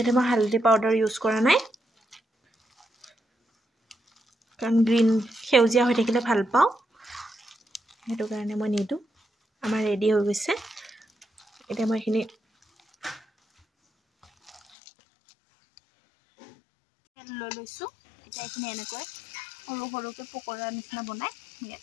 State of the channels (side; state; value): right; drops out; at 14.6 s